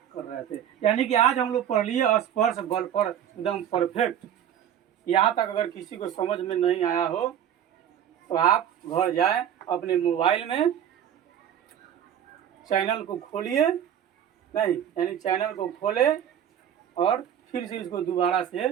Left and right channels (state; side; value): quieter; left; 9.8 dB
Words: कर रहे थे, यानी कि आज हम लोग पढ़ लिए स्पर्श बल पर एकदम परफेक्ट। यहाँ तक अगर किसी को समझ में नहीं आया हो तो आप घर जाए, अपने मोबाइल में चैनल को खोलिए, नहीं यानी चैनल को खोले और फिर से इसको दोबारा से